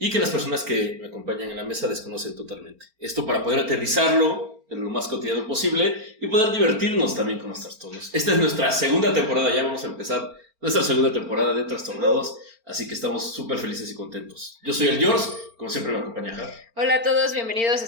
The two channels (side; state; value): left; late; 4.4 ms